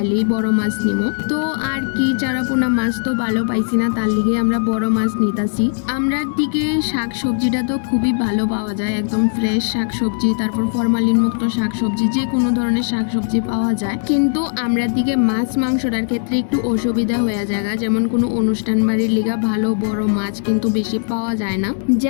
বড় মাছ নিমো। তো আর কি, চারাপোনা মাছ তো ভালো পাইছি না, তার লিগে আমরা বড় মাছ নিতাছি। আমরা দিকে শাক সবজিটা তো খুবই ভালো পাওয়া যায়, একদম ফ্রেশ শাক সবজি, তারপর ফরমালিন মুক্ত শাক সবজি, যে কোনো ধরনের শাক সবজি পাওয়া যায়। কিন্তু আমরা দিকে মাছ মাংসটার ক্ষেত্রে একটু অসুবিধা হয়ে যায়, যেমন কোনো অনুষ্ঠান বাড়ির লিগা ভালো বড় মাছ কিন্তু বেশি পাওয়া যায় না।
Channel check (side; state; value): right; silent; digital silence